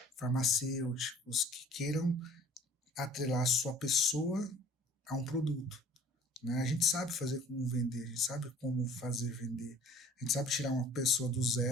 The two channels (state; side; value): normal; both; correlation 0.51